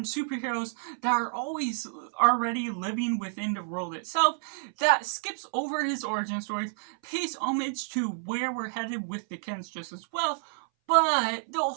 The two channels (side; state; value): left; silent; 58 dB below the other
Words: superheroes that are always already living within the world itself, that skips over his origin stories, pays homage to where we're headed with the Kents just as well. But the